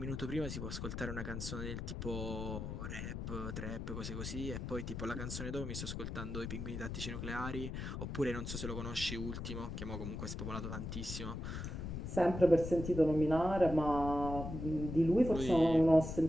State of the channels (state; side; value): noise; left; rumble, 5 dB below the sound